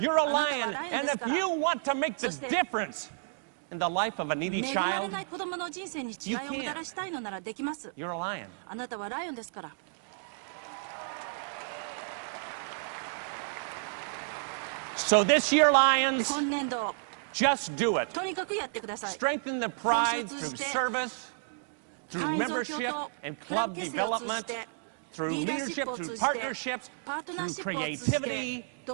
a lion. And if you want to make the difference in the life of a needy child, you can. You're a lion. So this year, Lions, just do it. Strengthen the pride through service, through membership and club development, through leadership, through partnerships, through creativity,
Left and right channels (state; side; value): silent; left; digital silence